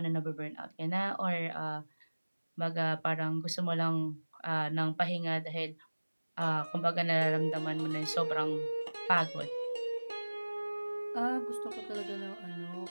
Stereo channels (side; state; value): both; inverted; correlation -1.00